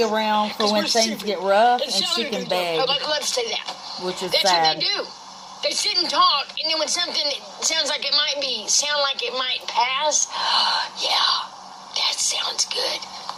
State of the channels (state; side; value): identical; both; correlation 1.00